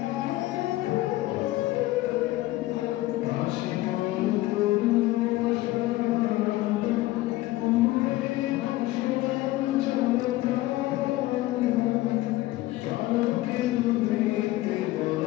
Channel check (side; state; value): right; quieter; 17.4 dB